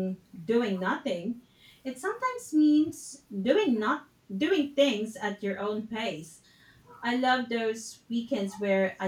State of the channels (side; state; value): both; identical; correlation 1.00